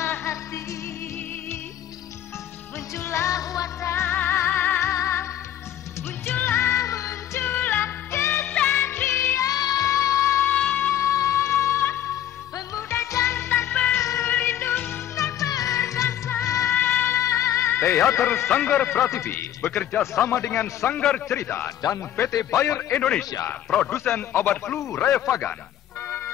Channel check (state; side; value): quieter; right; 11.4 dB